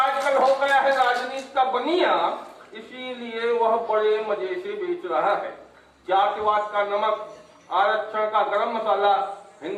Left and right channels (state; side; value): identical; both; correlation 1.00